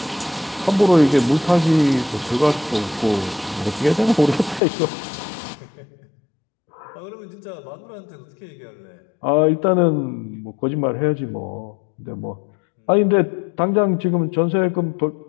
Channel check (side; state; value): right; drops out; at 4.6 s